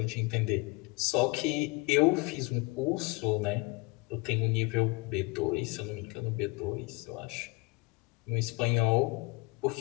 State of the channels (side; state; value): right; quieter; 25.4 dB